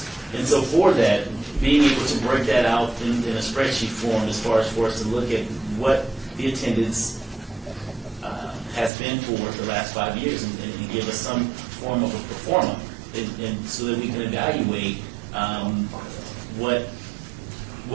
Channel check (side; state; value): left; drops out; at 8.9 s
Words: And so for that, being able to break that out in a spreadsheet form, as far as for us to look at what the attendance has been for the last 5 years, and give us some form of a pro forma, and so that we can evaluate